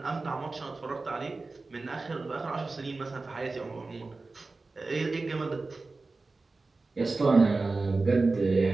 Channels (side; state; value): left; quieter; 3.6 dB